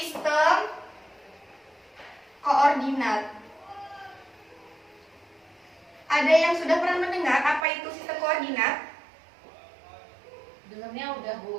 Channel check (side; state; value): left; drops out; at 7.7 s